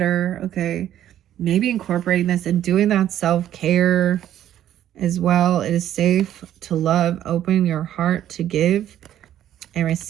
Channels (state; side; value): quieter; left; 11.5 dB